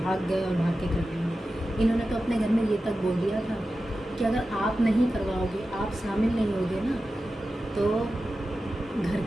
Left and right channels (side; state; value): both; normal; correlation 0.93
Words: भाग गए और भाग के कर लेंगे। इन्होंने तो अपने घर में ये तक बोल दिया था कि अगर आप नहीं करवाओगे, आप शामिल नहीं होगे ना, तो घर